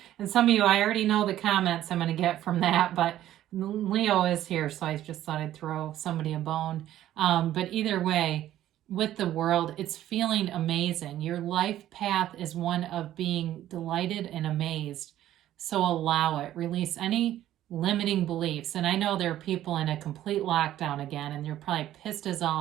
And some of you, I already know the comments I'm going to get from that, but Leo is here, so I just thought I'd throw somebody a bone. But either way, with the world, it's feeling amazing. Your life path is one of being delighted and amazed. So allow it. Release any limiting beliefs. And I know there are people in a complete lockdown again, and they're probably pissed as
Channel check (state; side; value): quieter; left; 12.8 dB